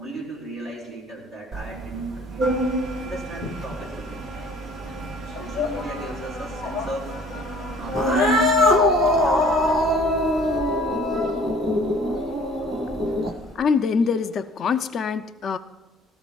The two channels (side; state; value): both; normal; correlation 0.53